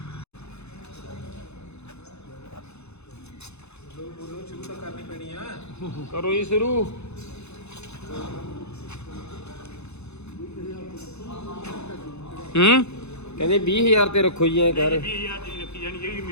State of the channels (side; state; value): right; late; 0.81 ms